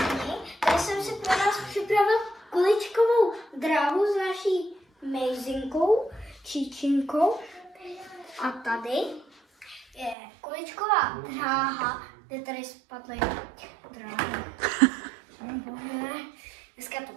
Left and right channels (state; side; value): drops out; left; at 10.2 s